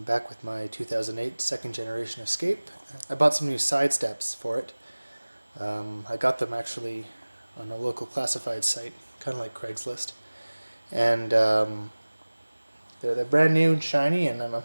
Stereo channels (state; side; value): inverted; both; correlation -1.00